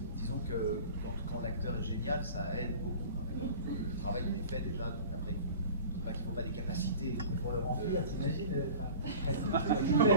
disons que quand l'acteur est génial, ça aide beaucoup. Quand même. Le travail il est fait déjà, donc après il pas qu'il ne faut pas des capacités. Mais pour le remplir, t'imagines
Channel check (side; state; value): both; inverted; correlation -0.41